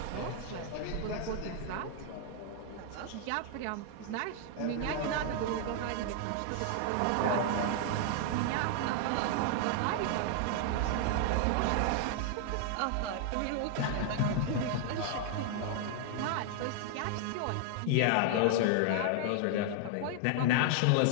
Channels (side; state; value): both; different; correlation 0.00